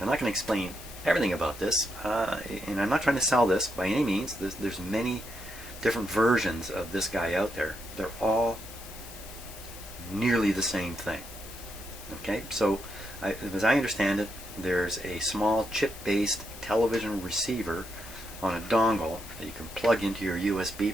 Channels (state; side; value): noise; left; hiss, 15 dB below the sound